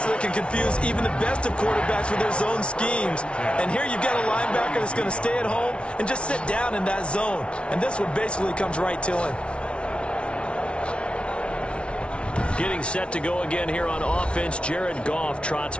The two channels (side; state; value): right; late; 0.059 ms